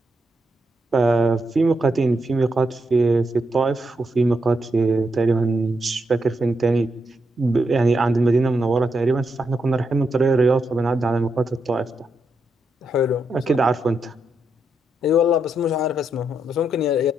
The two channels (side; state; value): both; normal; correlation 0.82